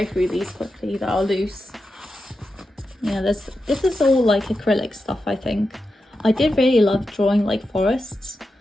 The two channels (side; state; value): both; normal; correlation 0.89